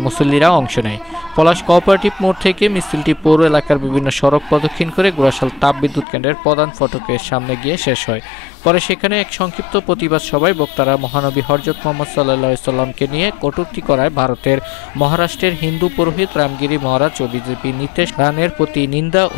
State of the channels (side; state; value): right; drops out; at 6.1 s